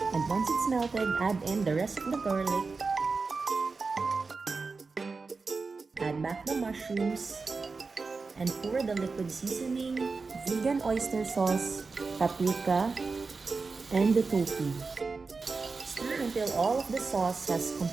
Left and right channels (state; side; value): quieter; left; 4.3 dB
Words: And once it's melted, add in the rest of the garlic. Add back the mushrooms. And pour the liquid seasoning, vegan oyster sauce, paprika, and the tofu. Stir until all of the sauce has